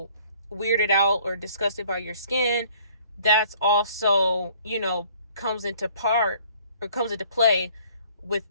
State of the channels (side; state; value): both; inverted; correlation -0.57